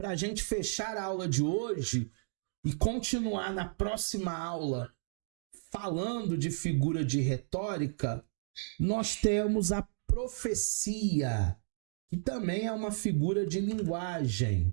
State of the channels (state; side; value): silent; left; digital silence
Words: a gente fechar a aula de hoje e continuar na próxima aula falando de figura de retórica, nós temos a profecia, que também é uma figura de